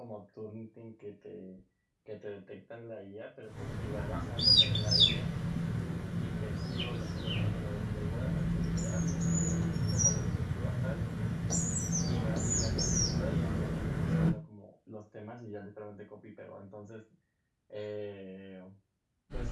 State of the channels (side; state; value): both; identical; correlation 1.00